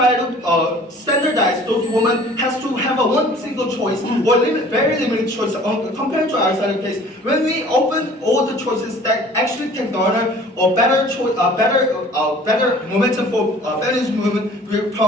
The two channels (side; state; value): both; normal; correlation 0.49